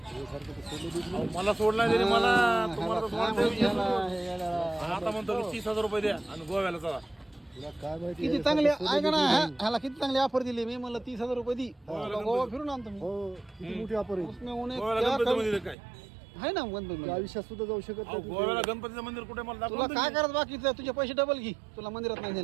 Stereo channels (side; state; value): left; drops out; at 15.8 s